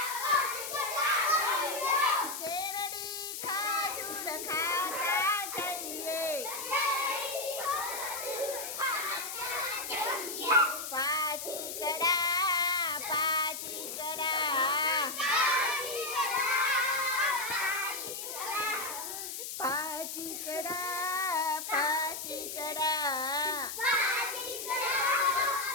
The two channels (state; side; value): noise; left; hiss, 6 dB below the sound